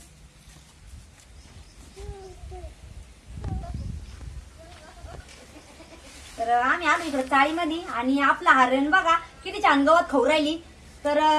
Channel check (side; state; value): both; identical; correlation 1.00